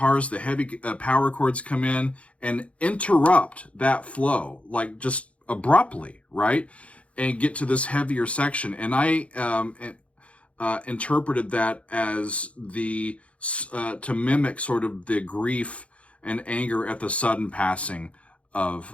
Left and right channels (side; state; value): right; late; 0.063 ms